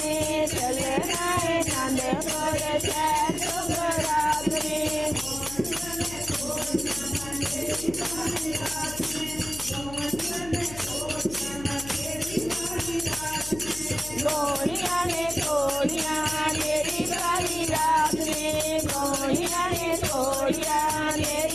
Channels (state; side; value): noise; left; hum, 14 dB below the sound